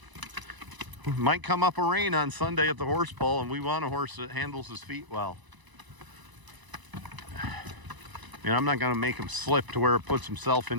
might come up a rain on Sunday at the horse pull, and we want a horse that handles his feet well. You know, I'm not going to make him slip to where it puts himself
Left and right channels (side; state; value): left; late; 1.0 ms